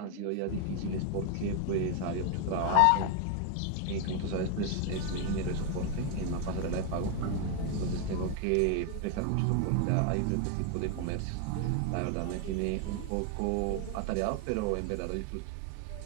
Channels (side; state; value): both; different; correlation 0.01